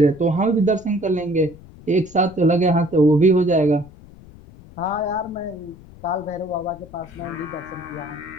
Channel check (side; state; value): left; noise; rumble, 21 dB below the sound